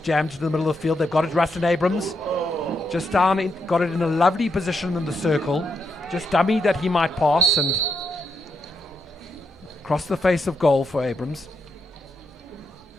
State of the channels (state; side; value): normal; both; correlation 0.80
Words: into the middle of the field. They've got it, Rustin Abrams. Just down, got it in a lovely position in the circle. Just dummy that he might pass and cross the face of goal for Abrams.